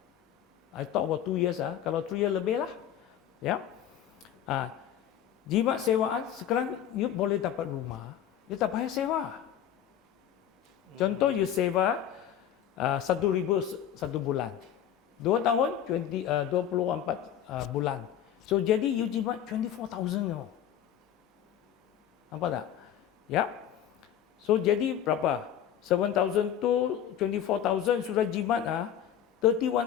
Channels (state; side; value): quieter; right; 10.0 dB